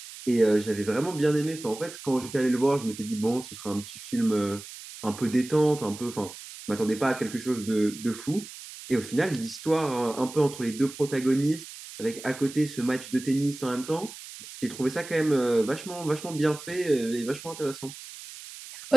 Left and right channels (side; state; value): right; noise; hiss, 14 dB below the sound